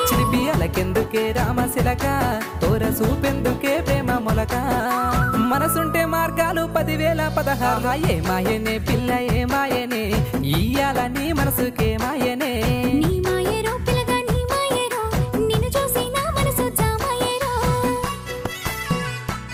చిలిపి అలకెందుకే రామశిలక తోర సూపెందుకే ప్రేమ మొలక మనసుంటే మార్గాలు 10,016 ఏ మాయనే పిల్ల ఏ మాయనే ఇయ్యాల నీ మనసుకే మాయనే నీ మాయేరో పిల్లగా నీ మాయేరో నిన్ను చూసి నా మనసు జామాయేరో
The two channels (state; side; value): identical; both; correlation 1.00